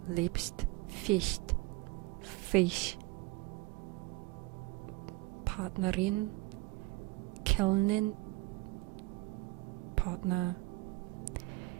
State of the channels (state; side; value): quieter; left; 22.1 dB